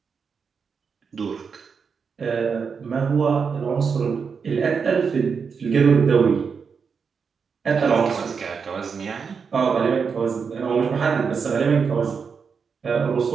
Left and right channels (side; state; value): left; quieter; 5.8 dB